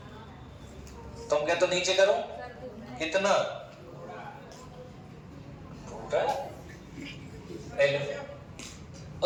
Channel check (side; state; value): both; identical; correlation 1.00